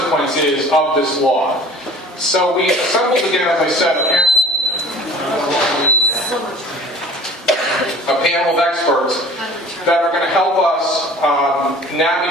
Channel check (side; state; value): both; normal; correlation 0.46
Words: is of this law. So we assembled again, as I said, a panel of experts that are going to help us